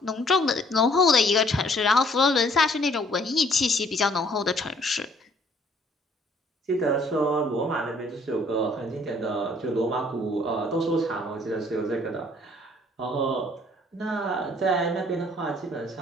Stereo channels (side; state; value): both; normal; correlation 0.61